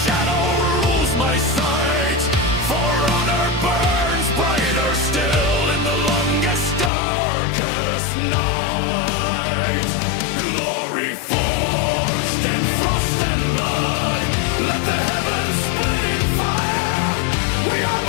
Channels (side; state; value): right; drops out; at 6.9 s